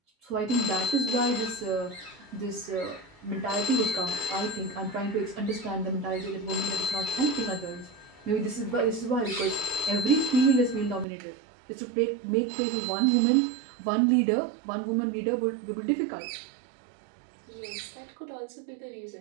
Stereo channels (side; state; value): left; drops out; at 11.1 s